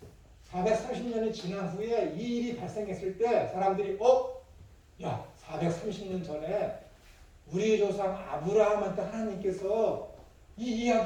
430년이 지난 후에 이 일이 발생했을 때 사람들이 야 430년 전에 우리 조상 아브라함한테 하나님께서 이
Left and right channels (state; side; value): identical; both; correlation 1.00